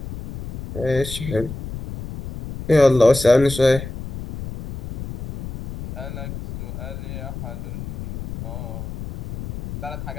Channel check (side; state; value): left; noise; rumble, 9 dB below the sound